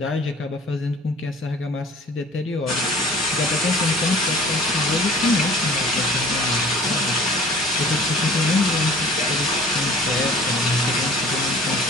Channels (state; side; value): normal; both; correlation 0.48